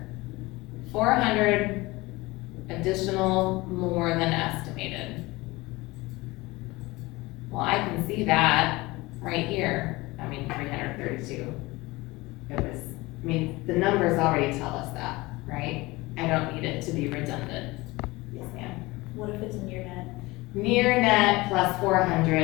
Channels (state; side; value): quieter; right; 21.5 dB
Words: 400 additional more than estimated. Well, I can see that right here. I mean, 332. It was, I mean, the numbers already tell us that, right? I don't need it to be redundant. Yes, ma'am. What if it's a near net? Near net plus